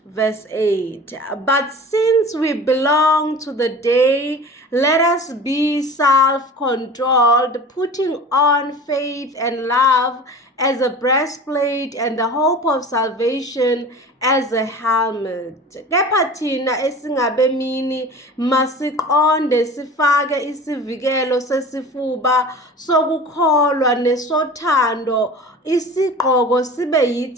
Verse 8. But since we belong to the day, let us be self-controlled, putting on faith and love as a breastplate and the hope of salvation as a helmet. Kepha thina esingabemini masiqonde sifake isivikelo sesifuba sokukholwa nesothando, isigqoko sibe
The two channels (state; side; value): normal; both; correlation 0.38